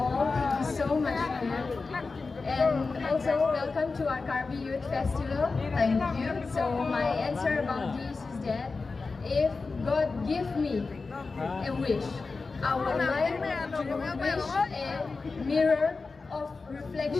thank you so much, ma'am. And also, welcome to our Carby Youth Festival. Thank you. So, my answer about this is that if God give me a wish, I would like to wish a mirror of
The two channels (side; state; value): right; quieter; 4.1 dB